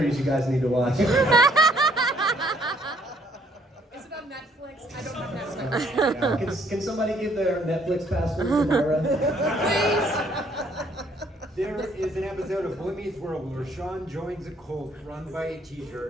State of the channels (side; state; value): both; normal; correlation 0.65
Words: you guys need to watch. Is it on Netflix? I don't have Netflix. Can somebody give their Netflix password to Myra? There is an episode of Boy Meets World where Sean joins a cult run by a